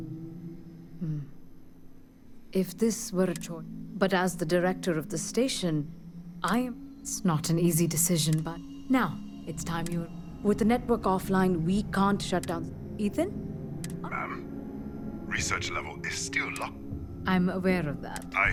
If this were a choice... But as the director of the station, It's not an easy decision, but... Now, it's time you... With the network offline, we can't shut down... Ethan? Ma'am, research level is still locked. I'm aware of that.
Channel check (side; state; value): both; identical; correlation 1.00